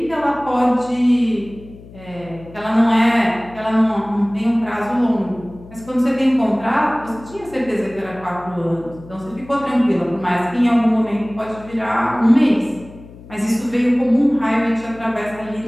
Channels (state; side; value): noise; left; hum, 19 dB below the sound